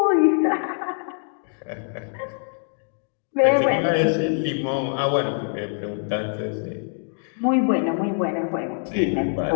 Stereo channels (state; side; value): silent; right; digital silence